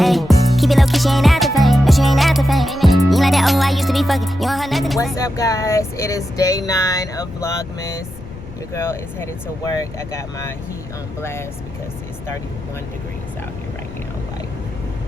keep it low key, she ain't after fame. No, she ain't after fame. You ain't like that, oh, I used to be fucking. You don't have nothing. What's up, guys? It is day 9 of Vlogmas. Your girl is headed to work. I got my heat on blast because it's 31 degrees out here right now. Like,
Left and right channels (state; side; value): noise; left; rumble, 16 dB below the sound